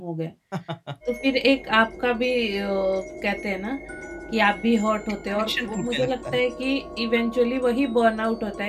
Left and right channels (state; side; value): identical; both; correlation 1.00